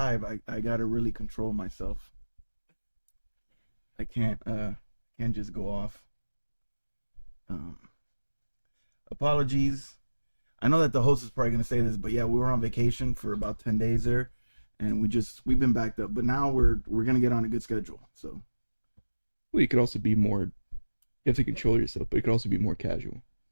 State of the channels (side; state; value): both; inverted; correlation -1.00